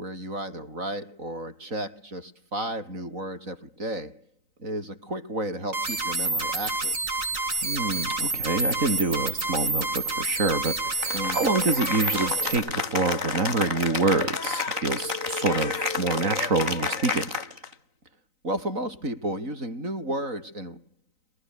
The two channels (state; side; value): late; left; 3.9 ms